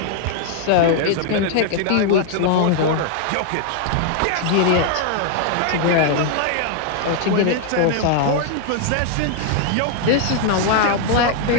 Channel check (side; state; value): both; different; correlation 0.00